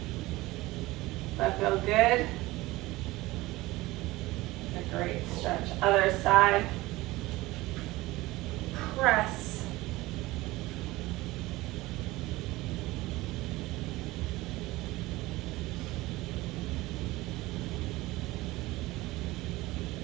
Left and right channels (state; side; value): quieter; left; 19.4 dB